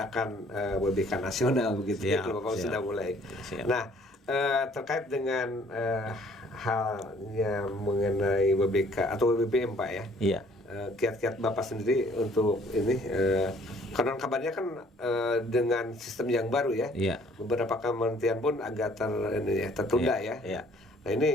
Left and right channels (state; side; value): normal; both; correlation 0.58